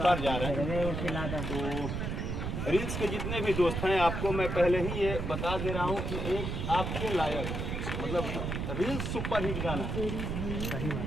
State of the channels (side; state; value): right; noise; rumble, 3 dB below the sound